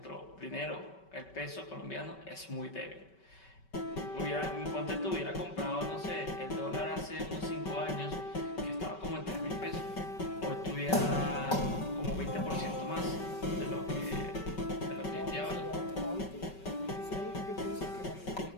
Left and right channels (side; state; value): right; late; 5.3 ms